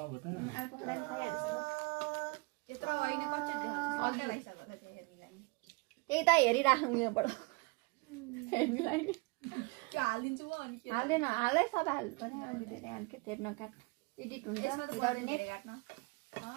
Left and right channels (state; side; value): quieter; left; 28.6 dB